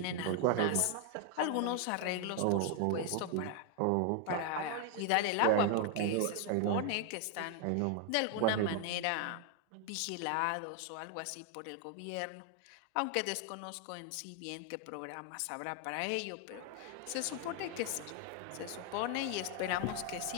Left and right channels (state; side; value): different; both; correlation 0.00